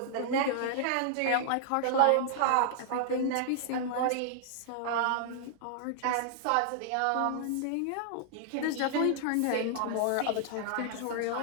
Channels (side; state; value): both; different; correlation -0.01